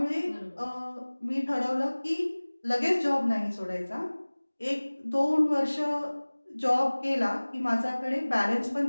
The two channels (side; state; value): both; inverted; correlation -1.00